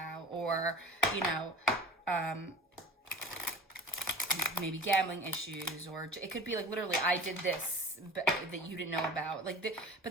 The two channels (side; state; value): both; normal; correlation 0.39